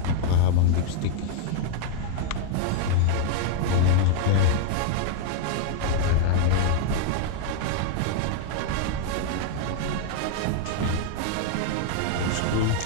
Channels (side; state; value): both; different; correlation -0.01